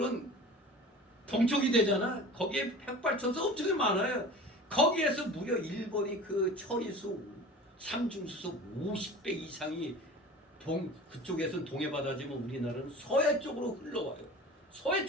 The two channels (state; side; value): normal; both; correlation 0.38